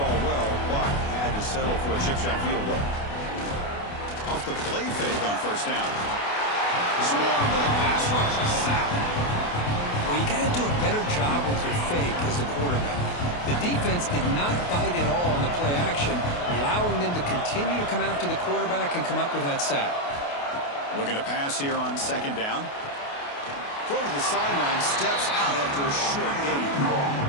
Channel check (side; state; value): right; late; 28 ms